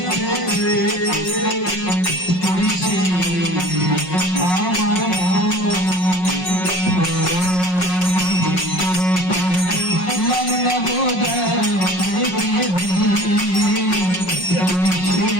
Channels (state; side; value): late; right; 5.5 ms